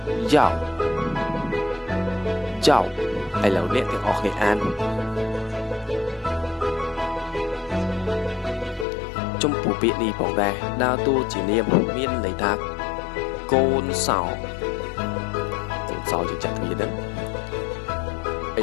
យ៉ាវយ៉ាវឥឡូវអ្នកទាំងអស់គ្នាអានចំពោះពាក្យនេះផងដែរដើរតួជានាមមានន័យថាកូនសោយើងចាក់គ្នាហ្នឹងឥ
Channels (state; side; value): drops out; right; at 8.8 s